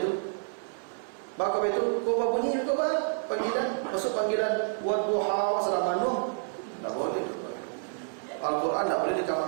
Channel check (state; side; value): silent; left; 56 dB below the other